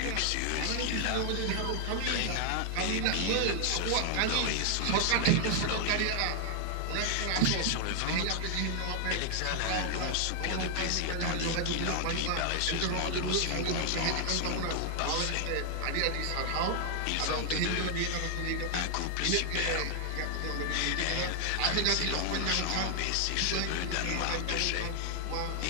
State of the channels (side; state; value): both; different; correlation 0.00